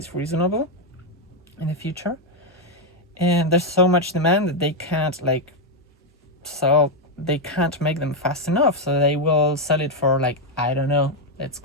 reasonable in the future. And there's so much demand that they can't make them fast enough. So they will sell it for like, I don't know, let's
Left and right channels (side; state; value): both; normal; correlation 0.02